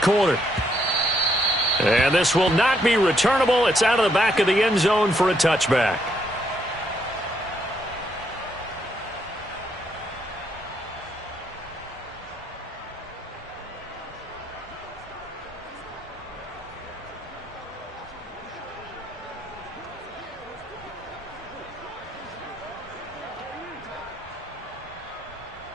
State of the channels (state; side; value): normal; both; correlation 0.74